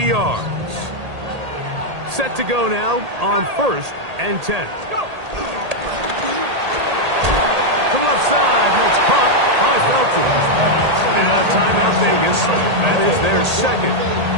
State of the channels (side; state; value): left; late; 1.8 ms